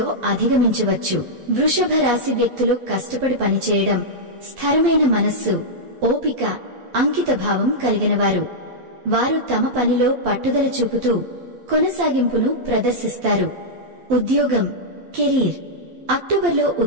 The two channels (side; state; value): left; late; 12 ms